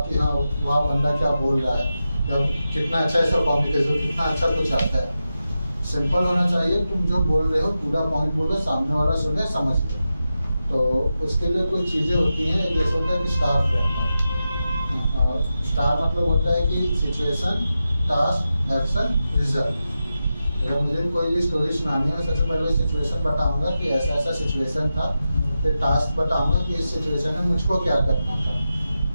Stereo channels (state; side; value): inverted; both; correlation -0.91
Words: कि हाँ वहाँ बंदा क्या बोल रहा है, या कितना अच्छा ऐसा कम्युनिकेशन, कितना अच्छा कुछ आता है। सिंपल होना चाहिए, तुम जो बोल रहे हो पूरा पॉइंट बोलो, सामने वाला सुने समझ ले। तो उसके लिए कुछ चीज़ें होती हैं, जैसे होता है कि स्टार फ्रेमवर्क। स्टार मतलब होता है कि सिचुएशन, टास्क, एक्शन, रिजल्ट। अगर मुझे कोई भी स्टोरी सुनानी है, सबसे पहले सिचुएशन बताऊंगा कि ऐसा ऐसा सिचुएशन था, फिर टास्क बताऊंगा कि इस सिचुएशन में मुझको क्या करना था,